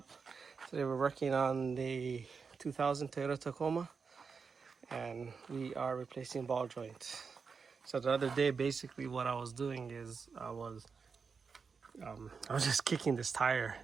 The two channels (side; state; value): left; quieter; 5.4 dB